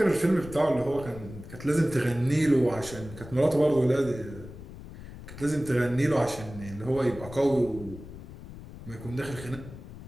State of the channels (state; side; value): noise; left; rumble, 14 dB below the sound